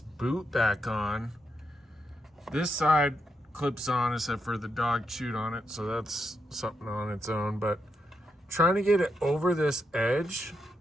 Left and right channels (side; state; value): both; normal; correlation 0.83